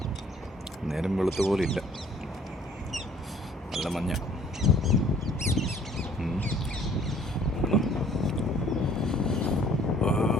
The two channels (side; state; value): both; normal; correlation 0.56